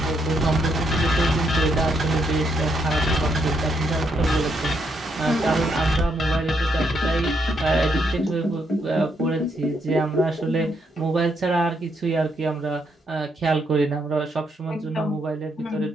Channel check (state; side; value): normal; both; correlation 0.76